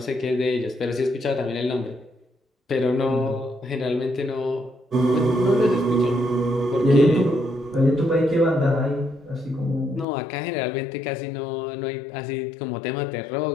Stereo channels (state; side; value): drops out; right; at 10.1 s